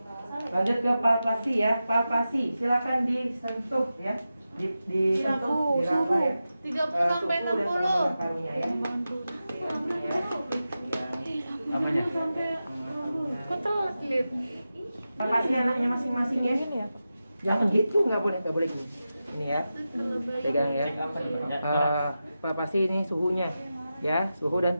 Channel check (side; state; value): both; inverted; correlation -0.92